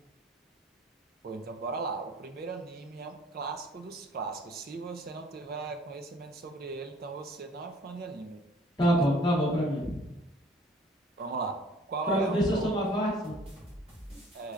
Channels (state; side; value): normal; both; correlation 0.55